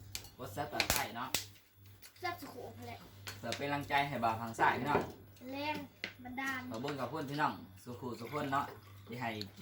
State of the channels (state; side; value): identical; both; correlation 1.00